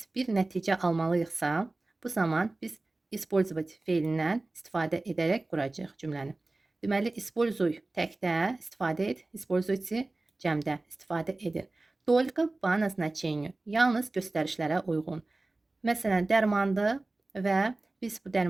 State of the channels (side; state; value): left; quieter; 3.0 dB